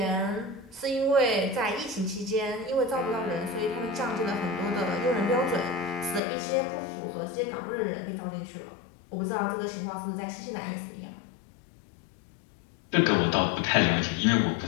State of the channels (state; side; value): drops out; right; at 6.2 s